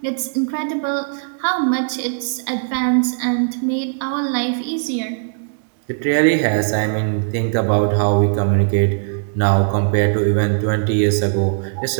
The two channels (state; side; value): silent; left; 67 dB below the other